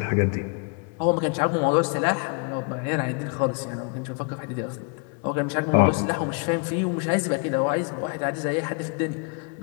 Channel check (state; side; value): quieter; right; 34.5 dB